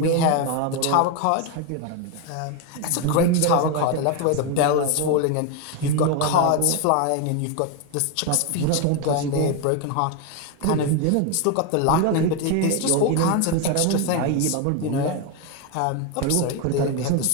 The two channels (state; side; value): different; both; correlation 0.02